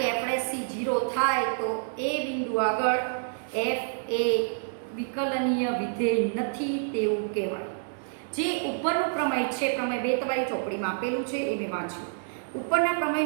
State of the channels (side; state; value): left; silent; digital silence